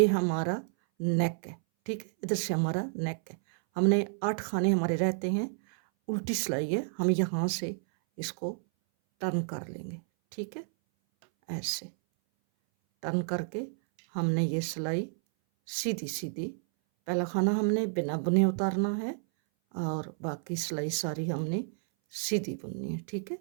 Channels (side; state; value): left; silent; 57 dB below the other